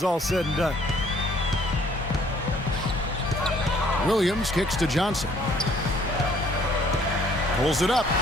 all said and done. Williams kicks to Johnson. Pulls it up.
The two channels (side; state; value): both; normal; correlation 0.60